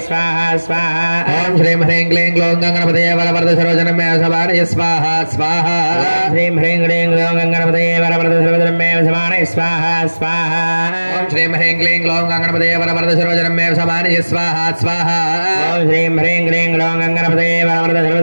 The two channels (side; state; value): both; inverted; correlation -1.00